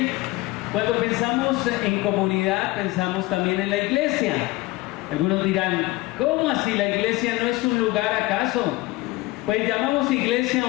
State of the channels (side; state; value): right; quieter; 19.9 dB